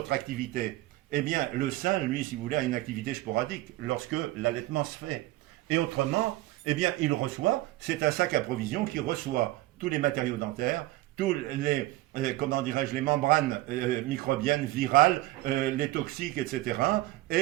activités, eh bien, le sein, lui, si vous voulez, a une activité sporadique lorsque l'allaitement se fait. Et autrement, eh bien, il reçoit, c'est un sac à provision qui reçoit tous les matériaux dentaires, tous les, comment dirais-je, les membranes microbiennes, virales, les toxiques, etc.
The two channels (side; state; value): left; quieter; 17.8 dB